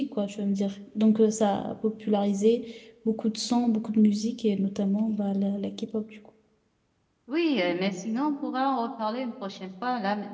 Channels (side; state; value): both; identical; correlation 1.00